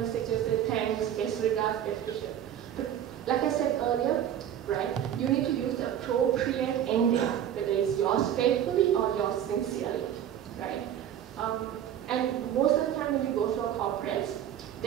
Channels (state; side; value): quieter; left; 10.3 dB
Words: signature, say thanks, best regards, best wishes. But like I said earlier, right, you need to use the appropriate ending, whether it's yours faithfully or yours sincerely, right? And most of the time when you go to a corporate,